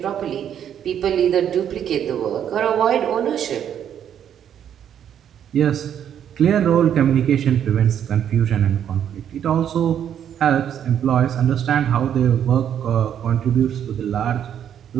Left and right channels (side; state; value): left; quieter; 9.4 dB